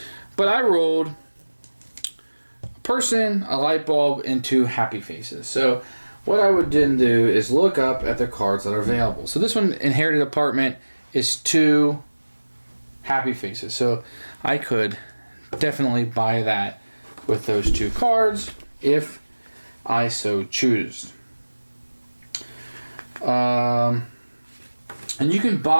But I rolled a person, a light bulb, and 2 happy faces. So what I would then do is look up at the cards that are available. So this one, inherited apartment, is 2 happy faces. So I could definitely buy that with those 2 cards if I so choose. And you can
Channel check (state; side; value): inverted; both; correlation -1.00